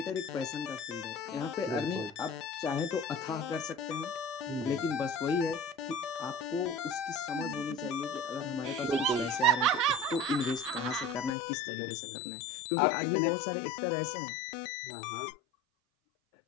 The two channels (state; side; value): drops out; right; at 11.4 s